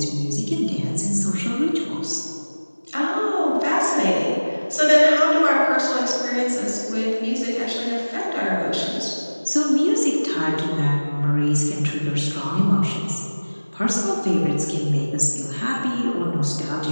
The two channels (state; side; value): inverted; both; correlation -1.00